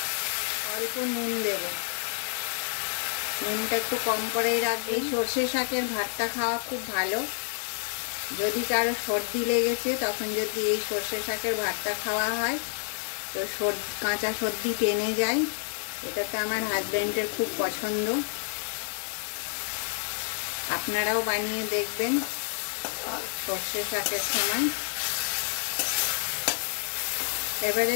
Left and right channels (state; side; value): silent; right; 59 dB below the other